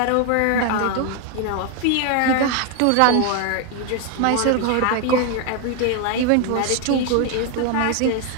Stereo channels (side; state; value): both; different; correlation 0.01